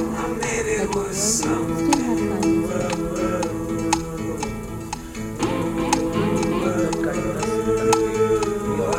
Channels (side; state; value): both; identical; correlation 1.00